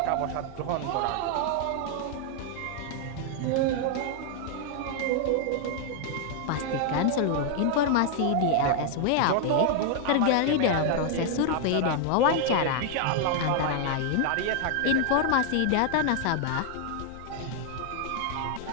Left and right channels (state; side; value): different; both; correlation 0.00